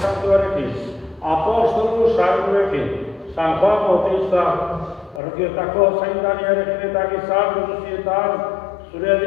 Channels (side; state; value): right; drops out; at 5.2 s